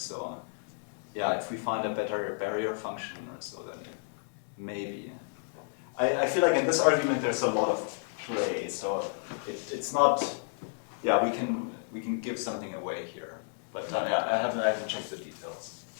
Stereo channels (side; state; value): right; silent; digital silence